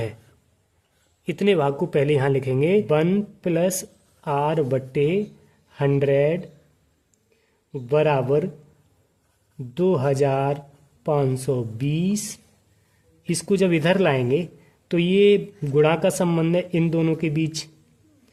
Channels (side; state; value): both; identical; correlation 1.00